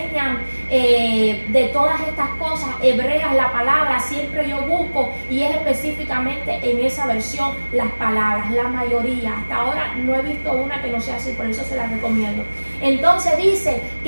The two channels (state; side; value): inverted; both; correlation -1.00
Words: de todas estas cosas hebreas, la palabra siempre yo busco y es específicamente en esa versión las palabras, la mayoría. Hasta ahora no he visto una que no sea así, por eso se la recomiendo. Entonces dice